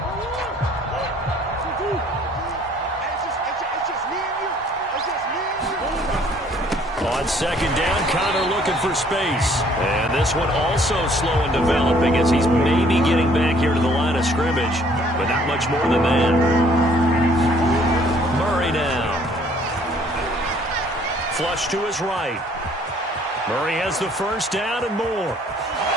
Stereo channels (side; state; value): both; normal; correlation 0.60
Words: On 2nd down, Connor looking for space. And this one also slow and developing as he's maybe getting back here to the line of scrimmage, but not much more than that. Murray now. Flush to his right. Murray has the first down and more.